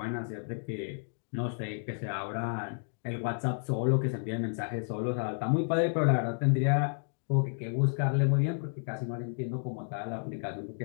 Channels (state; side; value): silent; right; digital silence